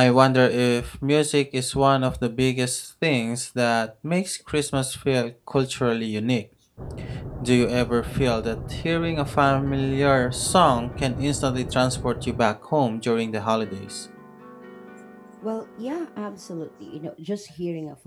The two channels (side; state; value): both; identical; correlation 1.00